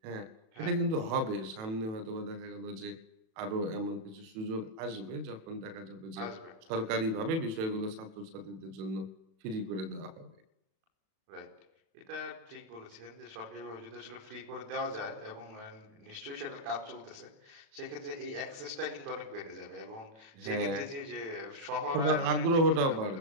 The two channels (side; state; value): left; late; 37 ms